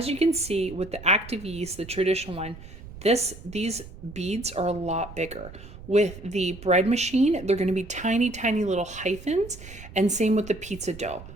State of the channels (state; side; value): noise; right; rumble, 16 dB below the sound